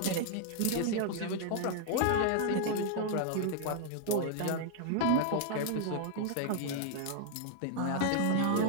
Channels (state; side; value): different; both; correlation 0.00